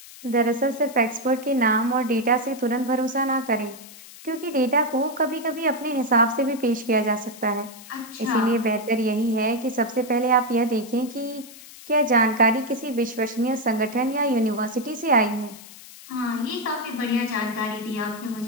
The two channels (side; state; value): left; noise; hiss, 18 dB below the sound